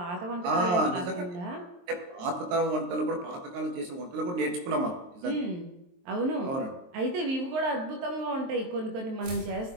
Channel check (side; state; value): left; late; 23 ms